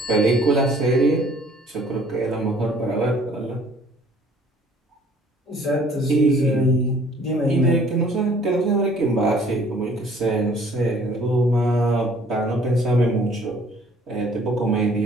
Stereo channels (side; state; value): both; normal; correlation 0.56